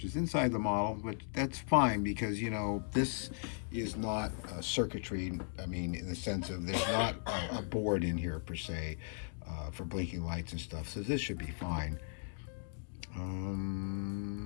is inside the model, but that's fine because, this is not circuitry. I mean, in the sense of there's not a board in here per se for blinking lights and stuff. So this should be fine.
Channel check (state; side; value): silent; right; 53 dB below the other